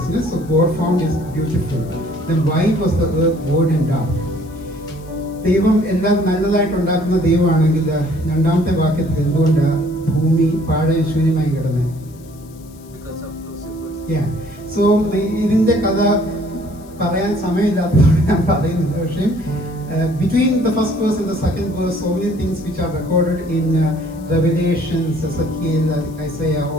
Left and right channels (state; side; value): noise; left; hiss, 26 dB below the sound